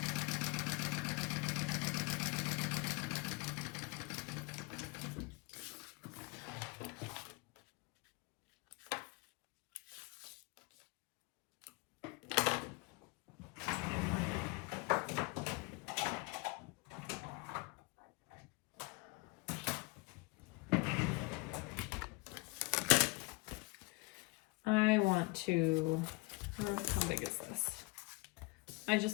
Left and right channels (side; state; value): right; quieter; 25.9 dB